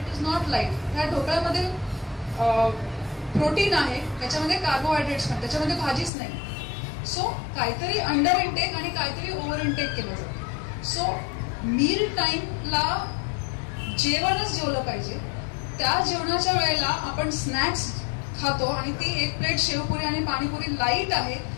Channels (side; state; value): right; drops out; at 6.1 s